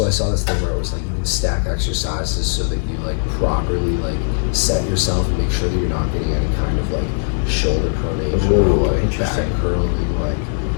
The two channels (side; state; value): right; silent; 59 dB below the other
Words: I saw this thing where it was like you can stack exercises so that you like properly like set yourself and make sure that you're not getting any kind of like shoulder pronation or like back curling. Like,